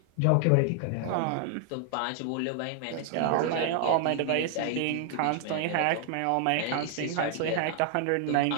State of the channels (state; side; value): different; both; correlation 0.00